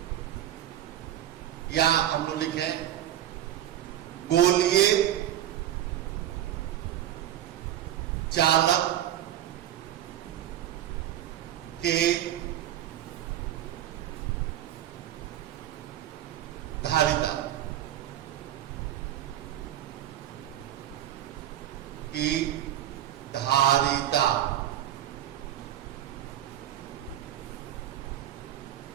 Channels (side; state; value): left; quieter; 11.9 dB